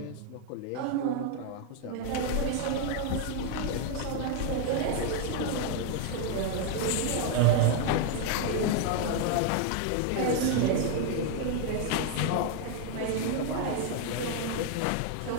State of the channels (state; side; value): different; both; correlation 0.00